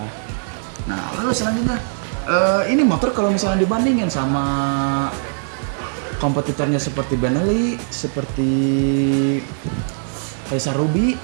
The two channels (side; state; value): left; silent; digital silence